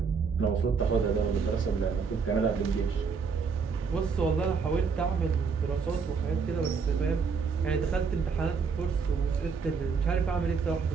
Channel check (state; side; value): quieter; left; 5.5 dB